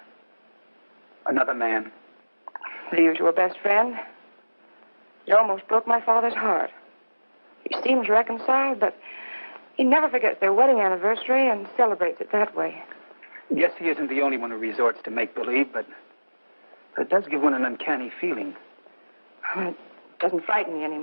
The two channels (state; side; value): inverted; both; correlation -1.00